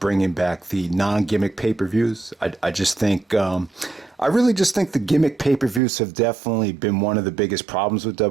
back the non-gimmick pay-per-views. I really just think the gimmick pay-per-views have definitely been one of the biggest problems with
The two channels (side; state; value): left; drops out; at 5.8 s